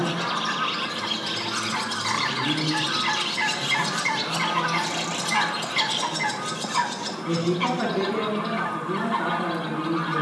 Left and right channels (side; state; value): both; identical; correlation 1.00